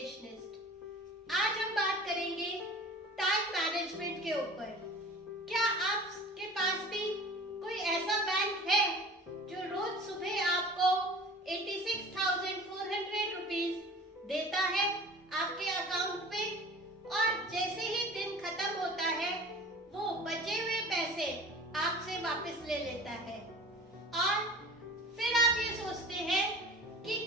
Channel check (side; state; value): both; normal; correlation 0.41